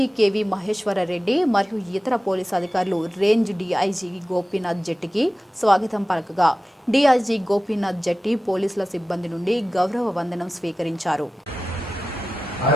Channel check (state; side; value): normal; both; correlation 0.95